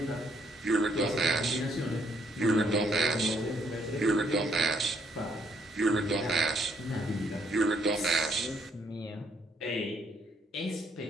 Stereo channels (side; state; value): both; normal; correlation 0.70